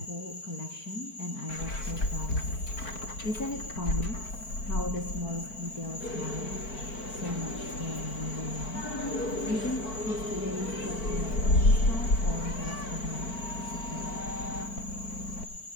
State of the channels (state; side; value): late; right; 4.5 ms